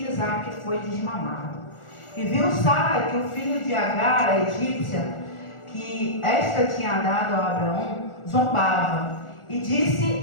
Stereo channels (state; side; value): late; right; 1.4 ms